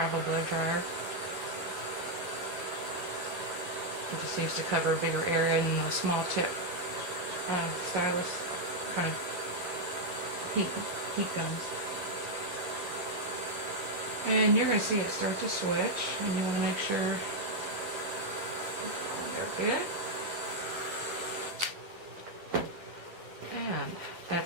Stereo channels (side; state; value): left; late; 11 ms